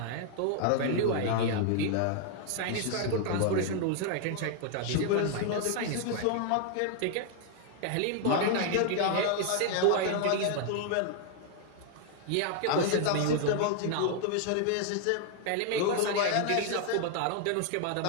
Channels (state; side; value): different; both; correlation 0.00